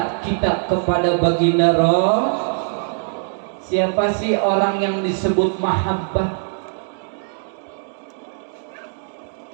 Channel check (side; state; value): left; silent; digital silence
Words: kita kepada baginda Rasul. Siapa sih orang yang disebut mahabbah?